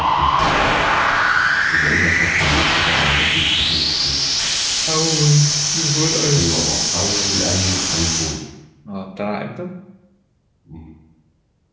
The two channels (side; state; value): both; identical; correlation 1.00